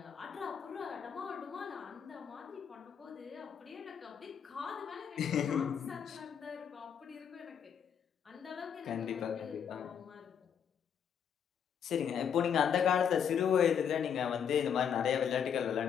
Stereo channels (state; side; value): quieter; right; 7.9 dB